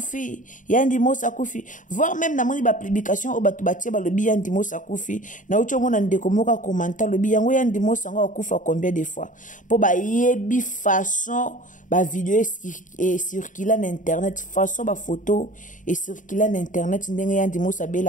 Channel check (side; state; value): right; late; 0.37 ms